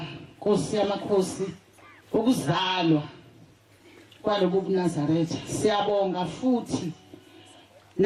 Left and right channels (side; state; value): both; identical; correlation 1.00